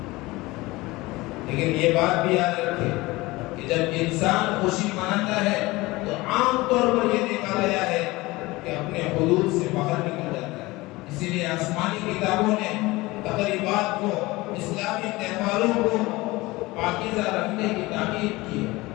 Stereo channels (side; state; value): right; quieter; 20.9 dB